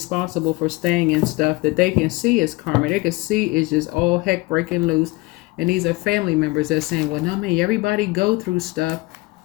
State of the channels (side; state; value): right; quieter; 22.8 dB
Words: for staying in stuff that they can see as karma. They can see is just all heck breaking loose. And these are family members that are saying, well, no, man, everybody go through stuff.